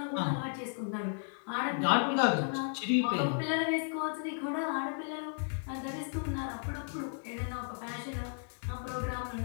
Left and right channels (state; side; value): silent; right; digital silence